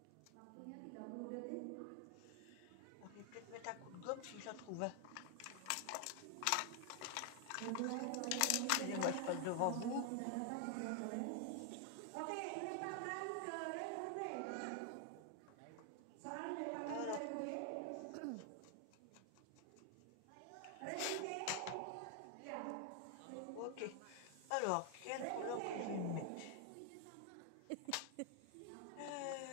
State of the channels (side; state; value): both; different; correlation 0.00